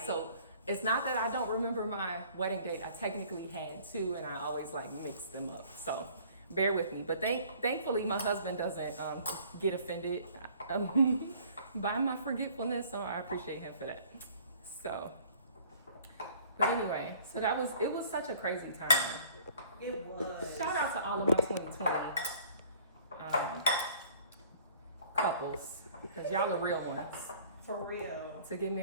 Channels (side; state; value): both; inverted; correlation -0.53